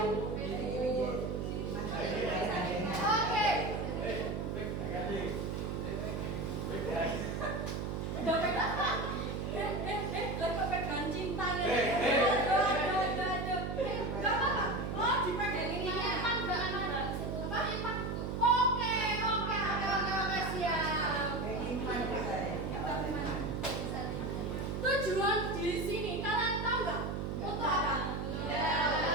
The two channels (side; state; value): right; noise; hum, 2 dB below the sound